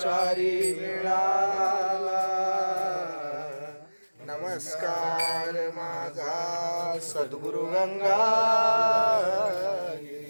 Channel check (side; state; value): both; inverted; correlation -1.00